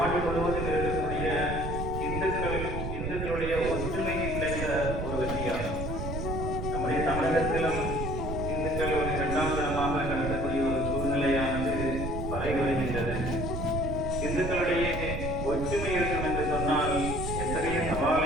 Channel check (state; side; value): noise; right; rumble, 3 dB below the sound